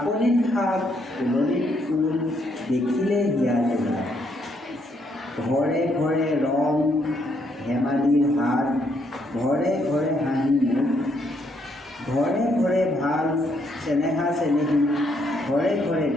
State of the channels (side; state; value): both; normal; correlation 0.73